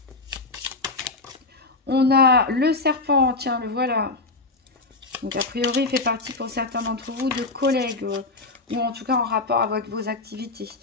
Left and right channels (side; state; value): right; quieter; 3.4 dB